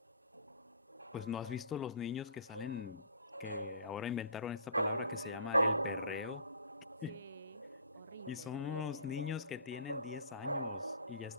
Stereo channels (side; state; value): both; inverted; correlation -0.47